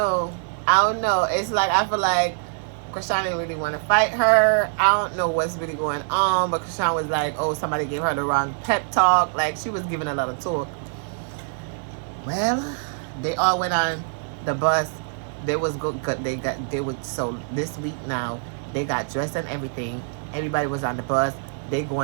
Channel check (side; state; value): left; silent; digital silence